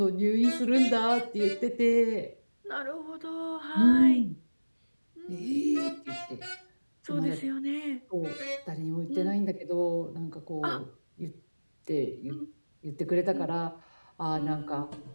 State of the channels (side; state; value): both; inverted; correlation -1.00